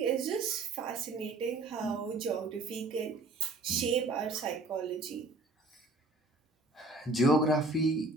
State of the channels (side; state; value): left; quieter; 3.2 dB